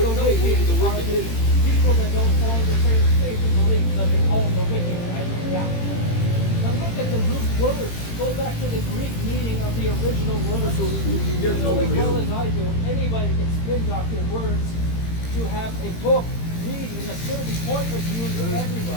the would know who wicked the are wicked the is. people that don't follow the same faith and belief that they call the wicked, right? Yeah. Now look at the root word. Go back to the Greek meaning of the original word. So you You get know as well no as I do, anybody can spin doctor words to have a book read in a certain point of view to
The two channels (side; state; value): right; late; 18 ms